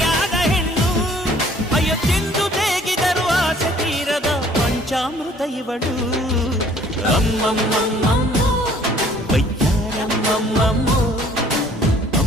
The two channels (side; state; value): both; normal; correlation 0.57